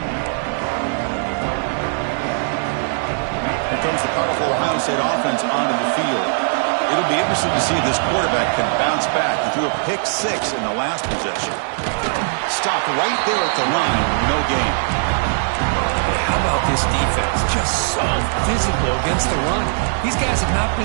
Here comes the powerful Ohio State offense onto the field. It'll be interesting to see if this quarterback can bounce back. He threw a pick-6 in the last possession. Stopped right there at the line. No gain. How about this defense? Just so physical against the run. These guys have not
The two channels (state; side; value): silent; left; 62 dB below the other